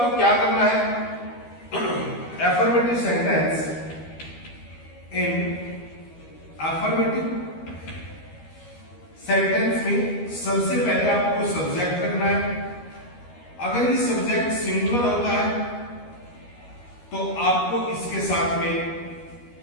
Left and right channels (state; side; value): late; right; 13 ms